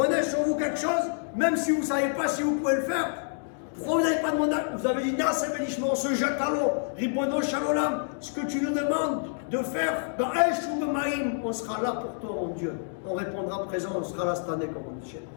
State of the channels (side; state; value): right; silent; digital silence